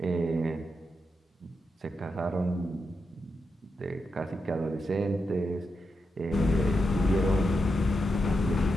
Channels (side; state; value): both; normal; correlation 0.86